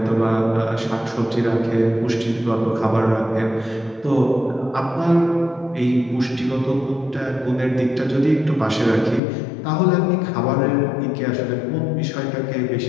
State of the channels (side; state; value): right; drops out; at 9.2 s